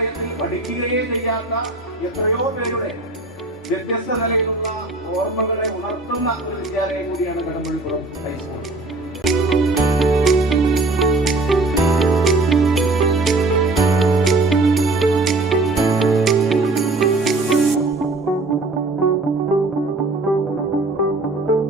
പഠിക്കുകയേ ചെയ്യാത്ത എത്രയോ പേരുടെ വ്യത്യസ്ത നിലയിലുള്ള ഓർമ്മകളെ ഉണർത്തുന്ന ഒരു വിദ്യാലയം കൂടിയാണ് കടമ്പഴിപ്പുറം ഹൈസ്കൂൾ.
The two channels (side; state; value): left; quieter; 3.2 dB